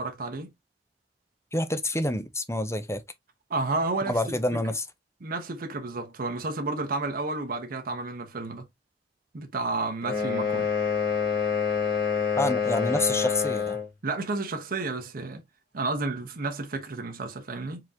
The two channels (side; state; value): both; normal; correlation 0.33